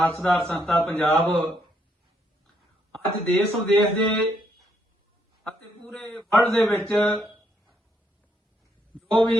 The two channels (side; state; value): both; normal; correlation 0.74